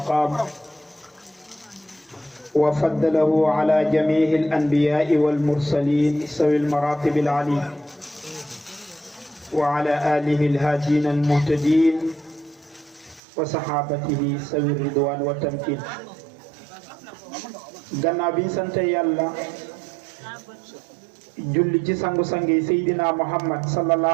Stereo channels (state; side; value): drops out; left; at 13.2 s